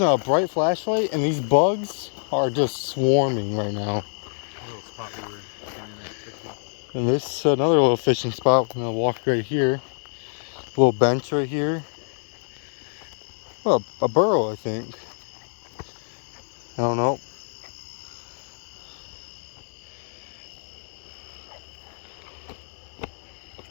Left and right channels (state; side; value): silent; right; digital silence